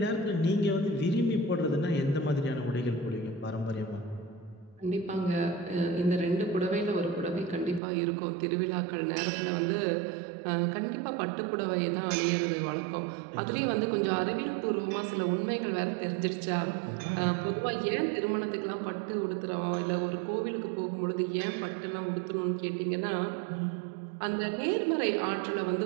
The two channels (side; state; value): left; drops out; at 7.8 s